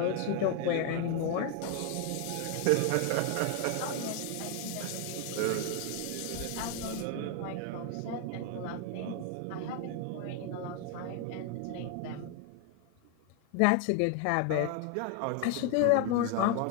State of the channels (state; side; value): different; both; correlation 0.01